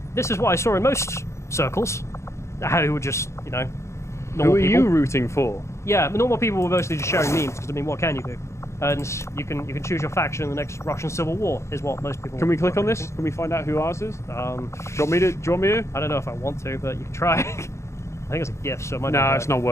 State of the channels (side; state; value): right; late; 0.14 ms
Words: this is what I saw in most circles. How you would just, you know, normal Who are people. you rooting for? Yeah, but normal people were mostly just sharing memes because I mean, what can you do? And you can choose your faction in the next Russian Civil War is what most people. Can we click were on this? thinking. Can we find out who ours is? Do Um, you want me to? Do you want me to? I don't know if I want to, but you can try. I think it's a gift, so it might No, not it's not